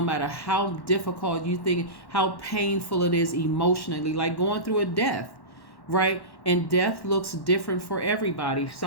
how difficult you think, how painful it is emotionally, like going through a death. Right? And death looks different for everybody.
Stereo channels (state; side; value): late; right; 1.1 ms